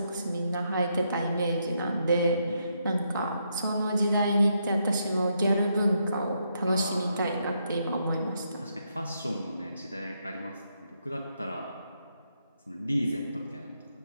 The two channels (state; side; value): inverted; both; correlation -0.78